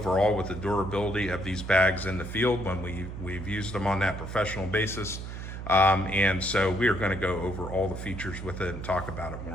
with the durability of these bags in the field when we've used them on that professional basis. And so we are going to go over all the features with it and talk about it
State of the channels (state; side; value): noise; right; hum, 8 dB below the sound